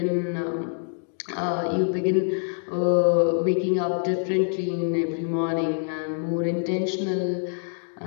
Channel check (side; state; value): right; silent; digital silence